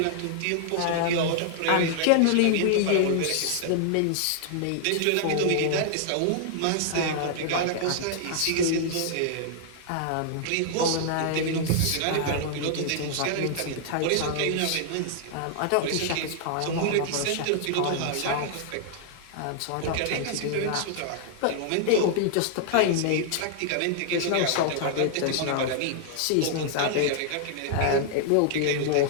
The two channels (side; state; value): both; different; correlation -0.01